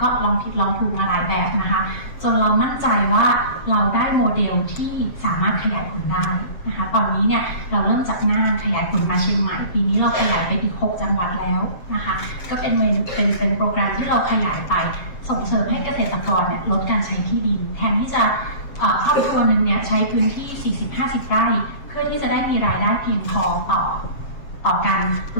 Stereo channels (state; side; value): late; right; 7.5 ms